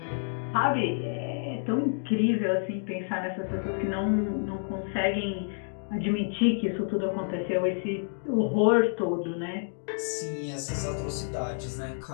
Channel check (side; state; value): right; silent; digital silence